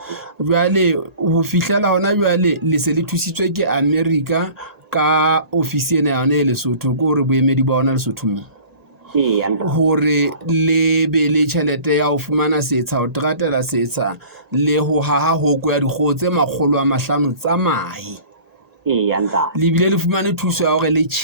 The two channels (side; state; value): left; late; 1.8 ms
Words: jwale ho fihlela hona jwale le se le thusitswe ke America ka ofisi ena ya yona e Lesotho ko re boemedi ba ona Lesotho mo hore le be le tjhelete ya ho fumana setsha ho tratela setsha le ho haha hoko ya dikgoho tse 500 tsa mahe le bile le fumane thuso ya hore le